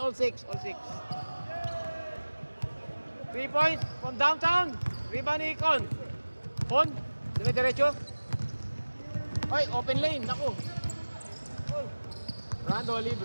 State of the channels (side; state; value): both; inverted; correlation -1.00